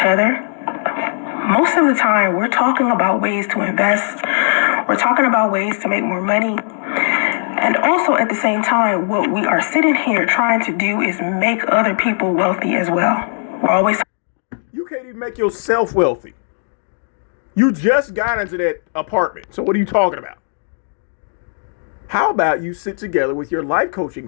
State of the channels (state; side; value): silent; right; digital silence